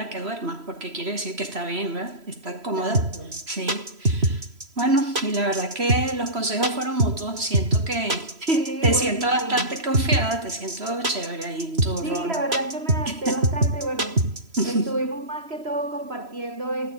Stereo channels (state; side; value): late; left; 3.0 ms